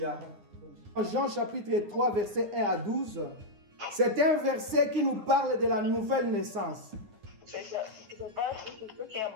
Jean chapitre 3, verset 1 à 12. C'est un verset qui nous parle de la nouvelle naissance. So it's a verse which is talking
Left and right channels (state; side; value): late; left; 9.8 ms